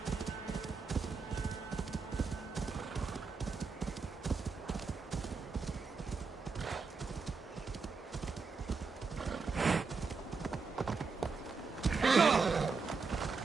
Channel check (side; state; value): left; quieter; 4.8 dB